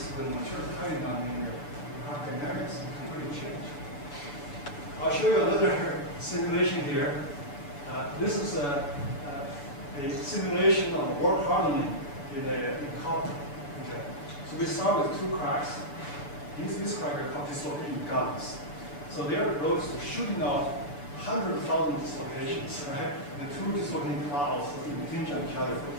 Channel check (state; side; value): late; right; 7.0 ms